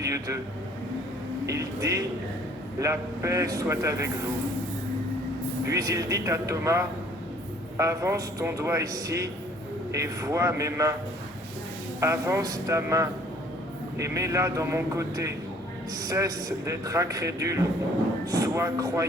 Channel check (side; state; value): both; normal; correlation 0.57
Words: d'eux. Il dit « La paix soit avec vous ». Puis il dit à Thomas « Avance ton doigt ici et vois mes mains. Avance ta main et mets-la dans mon côté. Cesse d'être incrédule, sois